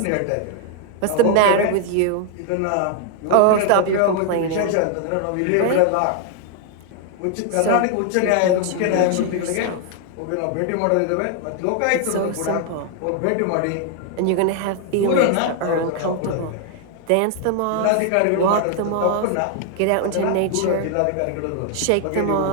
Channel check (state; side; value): different; both; correlation 0.00